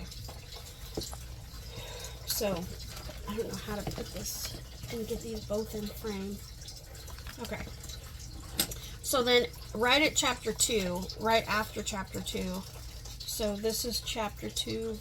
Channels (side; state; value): both; identical; correlation 1.00